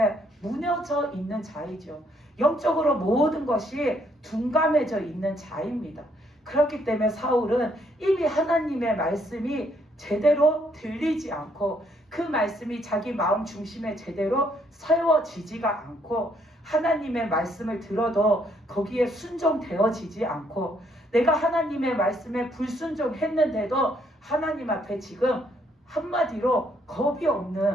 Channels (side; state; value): both; normal; correlation 0.70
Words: 무너져 있는 자이죠. 영적으로 모든 것이 둔감해져 있는 자입니다. 그렇기 때문에 사울은 이미 하나님의 말씀이 제대로 들리지 않고 그 말씀이 자기 마음 중심에 제대로 세워지지가 않고 하나님의 말씀을 들어도 거기에 순종되어지지 않고 내가 하나님의 말씀에 불순종했는데도 하나님 앞에 지금 한마디로 겁이